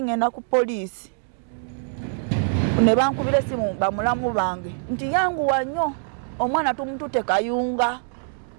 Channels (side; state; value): left; silent; digital silence